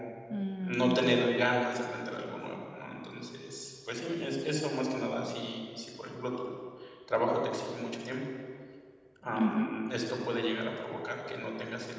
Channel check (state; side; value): identical; both; correlation 1.00